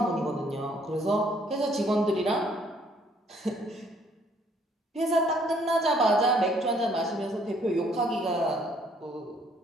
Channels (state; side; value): normal; both; correlation 0.64